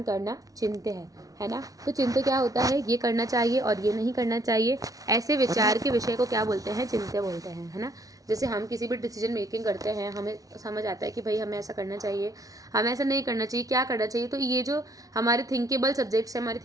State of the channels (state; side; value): late; left; 0.18 ms